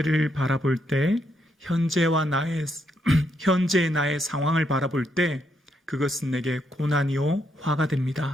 바라볼 때, 현재의 나의 상황을 바라볼 때 그것은 내게 고난이요 화가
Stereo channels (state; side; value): normal; both; correlation 0.77